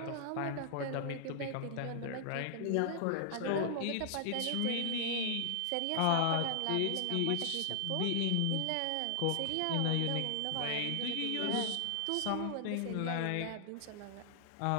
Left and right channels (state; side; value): different; both; correlation 0.00